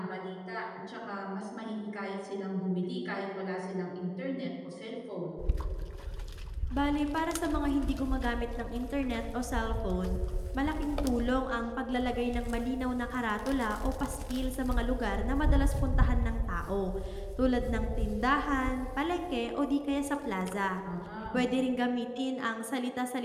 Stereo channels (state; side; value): identical; both; correlation 1.00